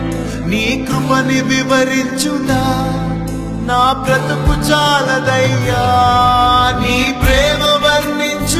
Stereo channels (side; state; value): both; identical; correlation 1.00